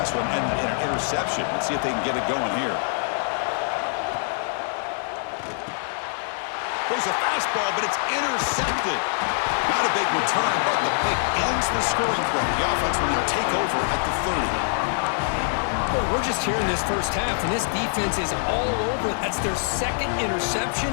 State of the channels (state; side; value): silent; right; 60 dB below the other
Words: one ended in an interception. Let's see if they can get it going here. There's a fastball, but it's intercepted. Not a big return, but the pick ends the scoring play. The offense will now take over at the 30. Well, we're just here in this first half, and this defense is all over. That's their 2nd interception.